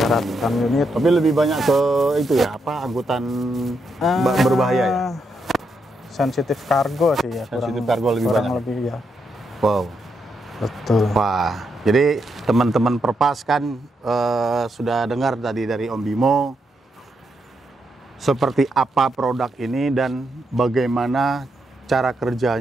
ratusan unit. Tapi lebih banyak ke itu ya, angkutan berbahaya ya? Sensitif kargo sih ya. Sensitif kargo lebih kurang banyak? lebih ya. Wow. Betul. Wah, jadi teman-teman Perpas kan sudah dengar tadi dari Om Bimo seperti apa produk ini dan bagaimana cara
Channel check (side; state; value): both; normal; correlation 0.81